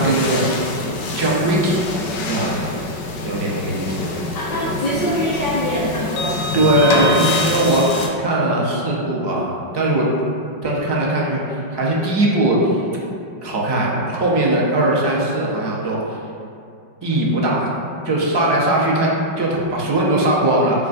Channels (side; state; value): right; late; 5.3 ms